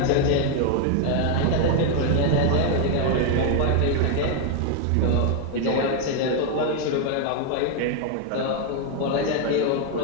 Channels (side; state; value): both; different; correlation 0.00